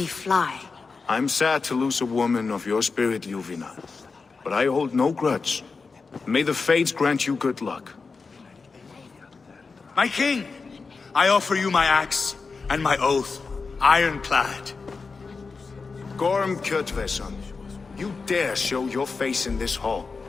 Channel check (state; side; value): quieter; right; 4.5 dB